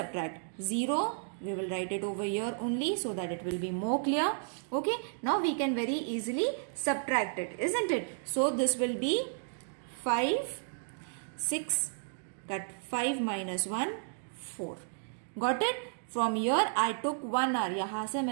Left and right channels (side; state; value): left; silent; digital silence